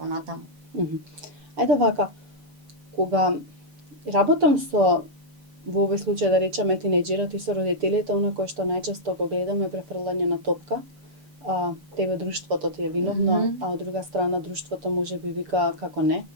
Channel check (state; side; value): late; left; 6.9 ms